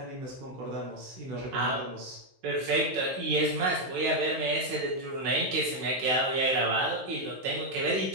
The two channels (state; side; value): late; left; 16 ms